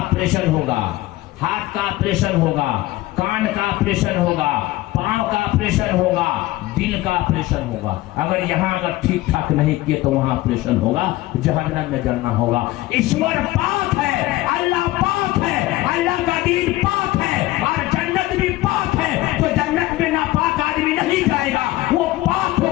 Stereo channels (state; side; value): quieter; right; 17.5 dB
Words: होगा, हाथ का ऑपरेशन होगा, कान का ऑपरेशन होगा, पांव का ऑपरेशन होगा, दिल का ऑपरेशन होगा। अगर यहाँ अगर ठीक ठाक नहीं किए तो वहां ऑपरेशन होगा, जहन्नम में जलना होगा। ईश्वर पाक है, अल्लाह पाक है, अल्लाह का दीन पाक है, और जन्नत भी पाक है। तो जन्नत में नापाक आदमी नहीं जाएगा, वो पाक